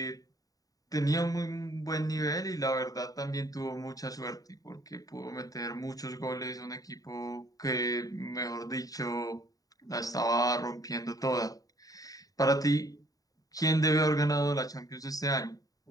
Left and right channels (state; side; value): late; right; 0.18 ms